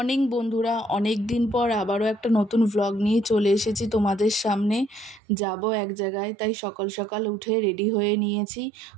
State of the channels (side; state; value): left; drops out; at 5.2 s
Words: বন্ধুরা, অনেক দিন পর আবারও একটা নতুন ভ্লগ নিয়ে চলে এসেছি তোমাদের সামনে। যাব এক জায়গায়, তাই সকাল সকাল উঠে রেডি হয়ে নিয়েছি।